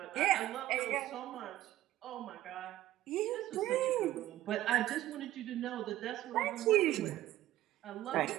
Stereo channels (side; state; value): left; quieter; 14.6 dB